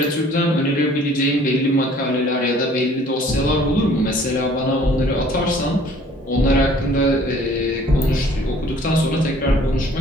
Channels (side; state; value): both; normal; correlation 0.55